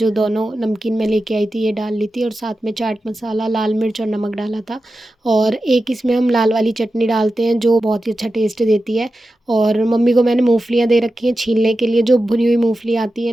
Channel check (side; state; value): both; normal; correlation 0.92